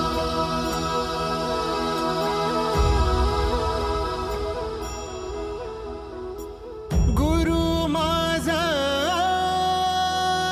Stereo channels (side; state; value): both; identical; correlation 1.00